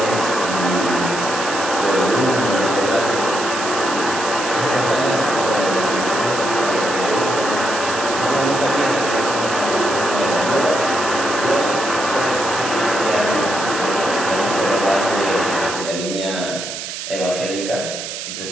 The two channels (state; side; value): noise; right; hiss, 7 dB below the sound